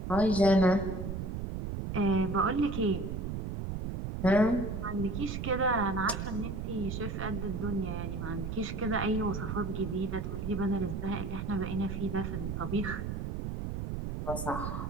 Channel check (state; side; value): noise; right; rumble, 4 dB below the sound